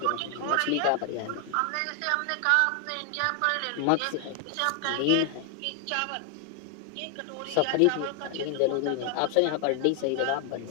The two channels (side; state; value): both; different; correlation 0.00